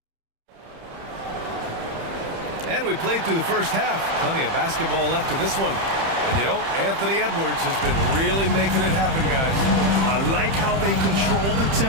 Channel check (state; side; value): late; left; 30 ms